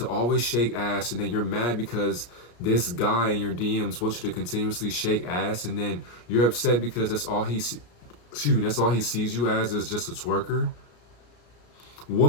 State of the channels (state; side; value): late; right; 33 ms